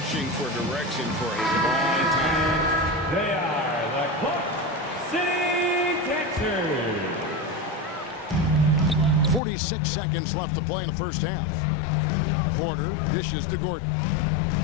for direction for a long time. They are the Clark City Texans. 46 seconds left to play in the first half. Porter dishes to Gordon.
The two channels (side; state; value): right; drops out; at 9.4 s